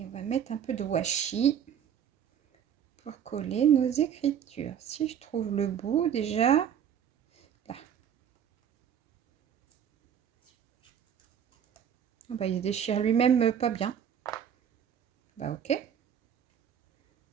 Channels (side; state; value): left; quieter; 8.7 dB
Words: on va mettre un peu de washi pour coller nos écritures. Si je trouve le bout déjà, là. Ah bah, il se déchire lui-même pas bien. Bah ok.